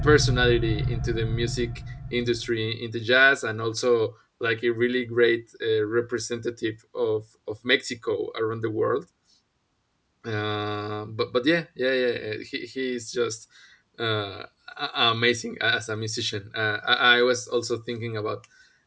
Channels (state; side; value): identical; both; correlation 1.00